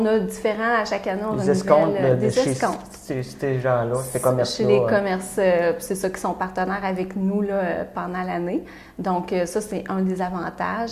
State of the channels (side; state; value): both; identical; correlation 1.00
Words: a différents, à chaque année, on des escomptes. Des escomptes. Ces gens-là, ces commerces-là. Chez les commerces, c'est ça qui sont partenaires avec nous là, pendant l'année. Donc, ça, c'est un des avantages.